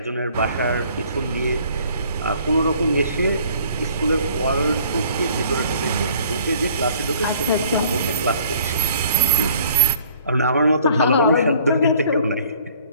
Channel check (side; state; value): both; inverted; correlation -0.56